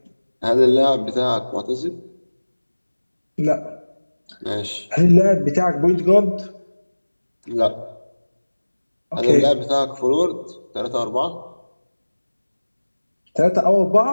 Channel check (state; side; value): inverted; both; correlation -1.00